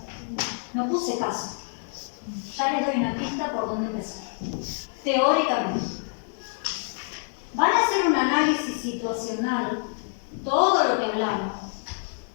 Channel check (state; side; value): silent; right; digital silence